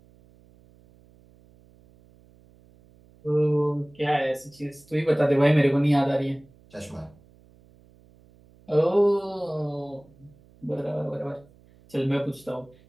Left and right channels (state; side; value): noise; right; hum, 28 dB below the sound